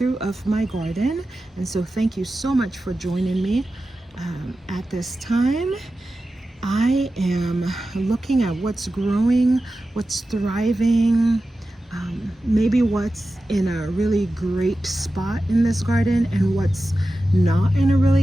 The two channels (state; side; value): normal; both; correlation 0.93